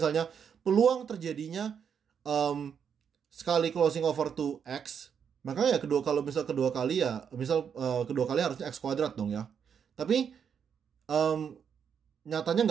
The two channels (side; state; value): left; quieter; 7.4 dB